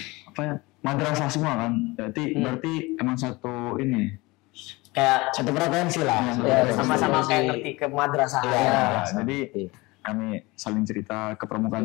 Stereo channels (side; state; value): right; quieter; 22.8 dB